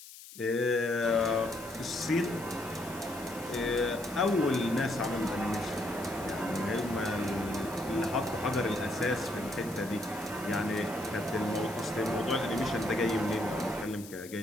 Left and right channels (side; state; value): left; noise; hiss, 16 dB below the sound